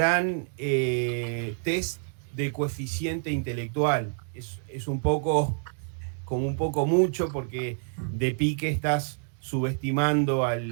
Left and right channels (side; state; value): left; silent; digital silence